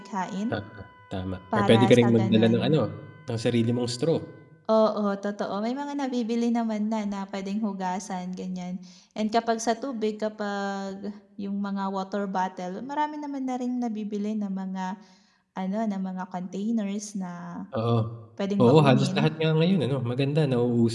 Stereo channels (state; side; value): identical; both; correlation 1.00